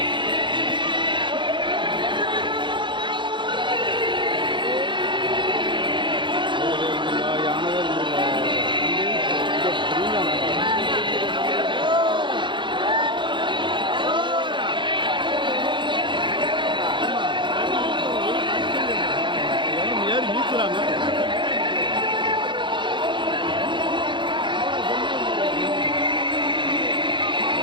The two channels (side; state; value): left; late; 0.23 ms